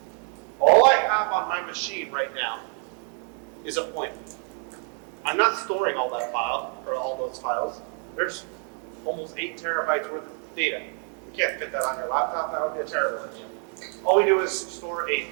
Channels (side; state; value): left; quieter; 39.0 dB